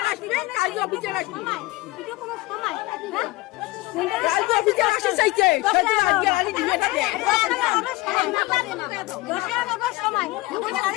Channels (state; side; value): quieter; right; 20.2 dB